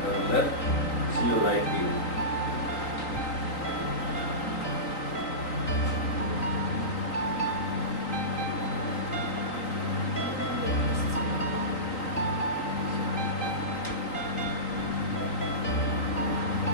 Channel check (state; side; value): late; right; 3.9 ms